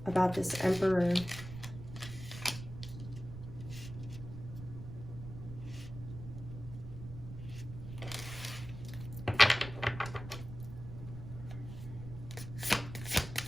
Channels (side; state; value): right; noise; rumble, 11 dB below the sound